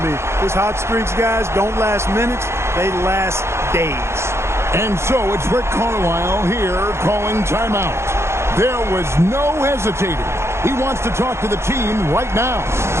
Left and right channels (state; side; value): late; left; 0.13 ms